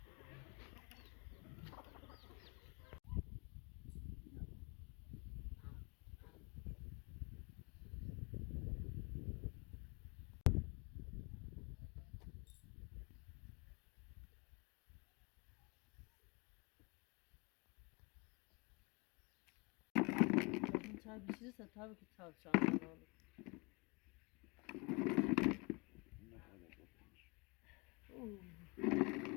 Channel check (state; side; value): quieter; right; 28.5 dB